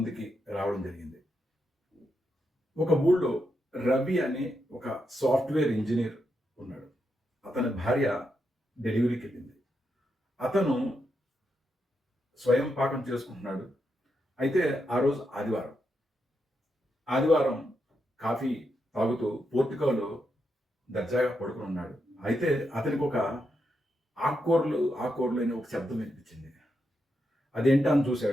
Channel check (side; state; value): both; normal; correlation 0.83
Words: రావడం జరిగింది. ఒక ఊళ్ళో రవి అనే ఒక సాఫ్ట్వేర్ ఇంజనీర్ ఉన్నాడు. అతని భార్య డెలివరీకి వెళ్ళింది. అతను స్వయం పాకం చేసుకుంటున్నాడు. అయితే ఆ రోజు ఆదివారం కాఫీ తాగుతూ పోర్టికోలో దర్జాగా పడుకుని ఉన్నాడు. అయితే అతనికి ఒక ఆకుకూరలు అనే ఒక శబ్దం వినిపించింది. అదేంటా అని